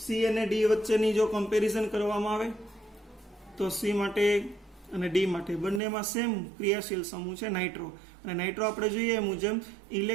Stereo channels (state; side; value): drops out; left; at 5.8 s